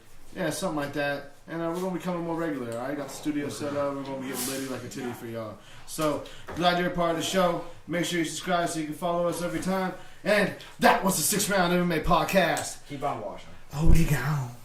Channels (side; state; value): both; identical; correlation 1.00